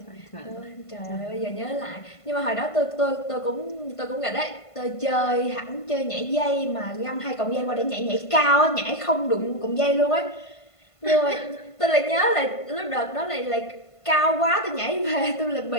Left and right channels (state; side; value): late; right; 1.5 ms